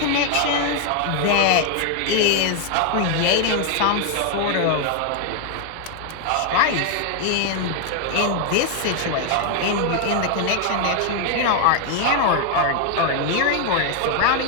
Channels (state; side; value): different; both; correlation 0.00